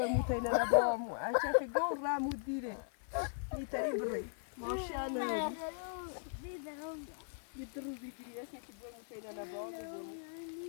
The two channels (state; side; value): silent; right; 52 dB below the other